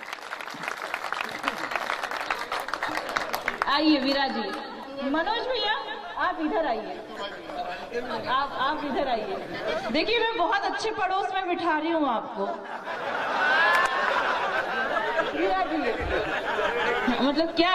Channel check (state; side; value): identical; both; correlation 1.00